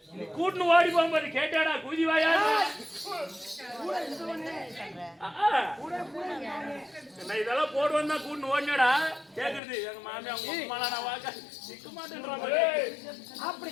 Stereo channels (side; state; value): right; drops out; at 9.6 s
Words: நீ கூட்டுன்னு ஓடி போகும்போது கேட்டாடா குதி வாயா நான் இதெல்லாம் போடுவேன் தான் கூட்டுன்னு ஓடினடா கேக்குறது எங்க மாமியா உங்க நான் வாக்க நிக்க மாட்டேன்ற அப்படி